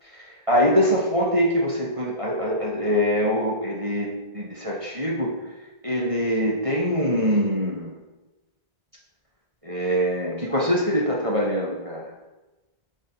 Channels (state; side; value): late; left; 1.6 ms